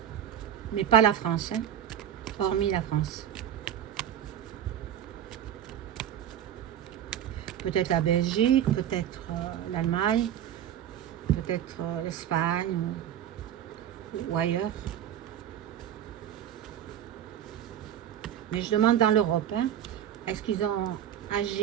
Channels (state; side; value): quieter; left; 10.4 dB